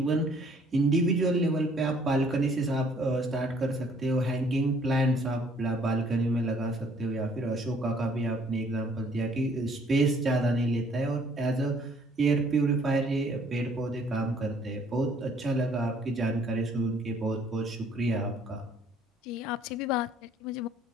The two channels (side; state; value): both; normal; correlation 0.61